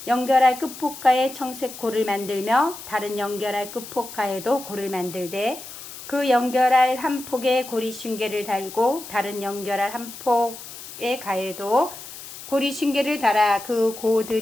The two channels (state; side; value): noise; left; hiss, 13 dB below the sound